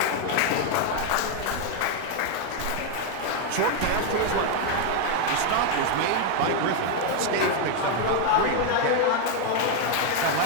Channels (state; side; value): different; both; correlation 0.01